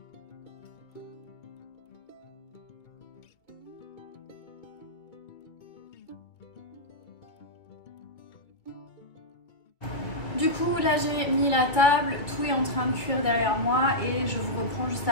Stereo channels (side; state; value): right; late; 2.1 ms